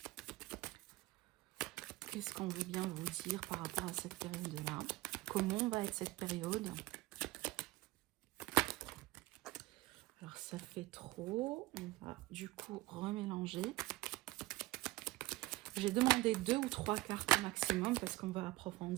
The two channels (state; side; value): quieter; left; 19.6 dB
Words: qu'est-ce qu'on veut bien vous dire par rapport à cette période-là? Comment va être cette période? Alors, ça fait trop. On va du coup remélanger. J'ai demandé 2 ou 3 cartes au maximum parce qu'on va